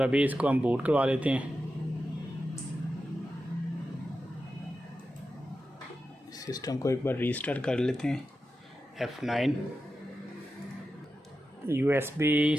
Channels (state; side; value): normal; both; correlation 0.91